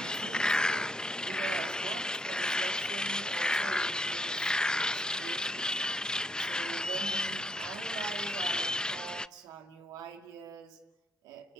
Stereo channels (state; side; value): normal; both; correlation 0.74